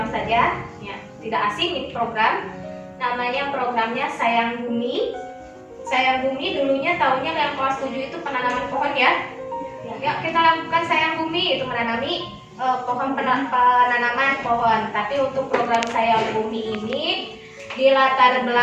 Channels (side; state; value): both; identical; correlation 1.00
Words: saja ya, tidak asing ini program. Namanya programnya Sayang Bumi. Sayang Bumi dulunya taunya yang kelas 7 itu penanaman pohon ya. Ya, kita lakukan Sayang Bumi itu menanami penanaman pohon. Tapi untuk program Sayang Bumi ini di latar